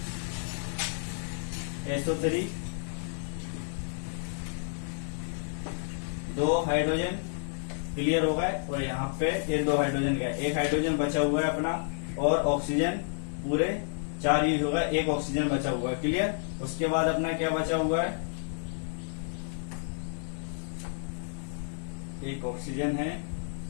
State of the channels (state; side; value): silent; right; digital silence